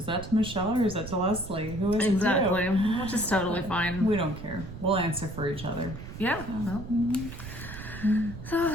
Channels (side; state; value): right; noise; rumble, 11 dB below the sound